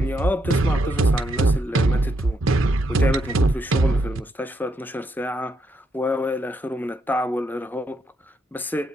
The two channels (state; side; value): normal; both; correlation 0.78